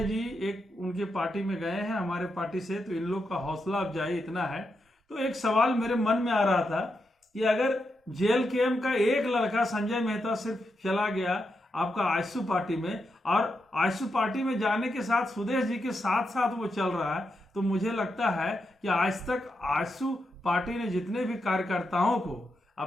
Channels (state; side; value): normal; both; correlation 0.85